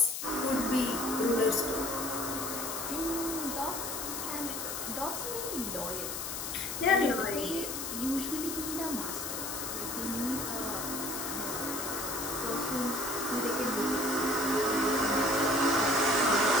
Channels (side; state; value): left; noise; hiss, 4 dB below the sound